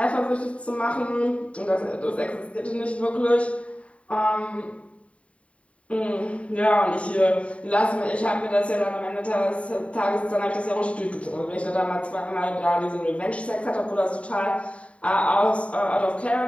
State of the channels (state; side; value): late; right; 0.064 ms